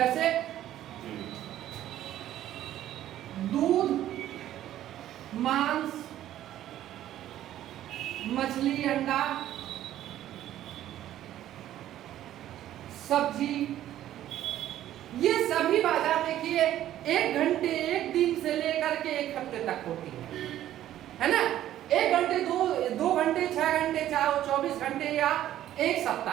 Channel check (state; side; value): quieter; left; 12.6 dB